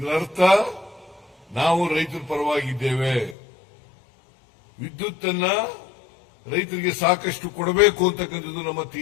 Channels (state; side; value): drops out; right; at 3.4 s